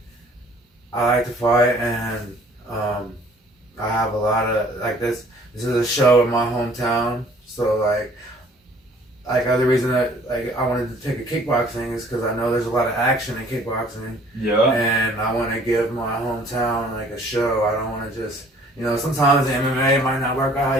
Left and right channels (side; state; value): both; normal; correlation 0.56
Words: I like to fight, and I have a lot of like this. This is a show in my hometown, so like other reason that I wanted to take a kickboxing is because I know there's a lot of action in kickboxing. Yeah. And I want to give my hometown like a show. I don't want to just sometimes the MMA might not work out how